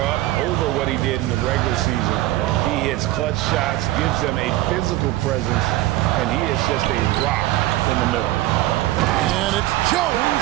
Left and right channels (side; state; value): left; quieter; 16.5 dB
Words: up over what he did in the regular season. He hits clutch shots, gives them a physical presence, and he is just a rock in the middle. And it's Jones